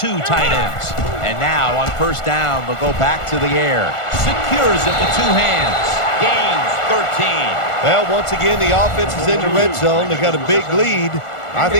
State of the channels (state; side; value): late; right; 1.4 ms